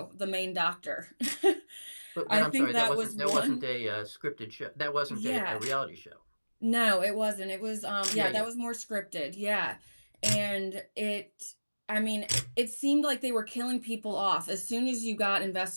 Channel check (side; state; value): both; inverted; correlation -1.00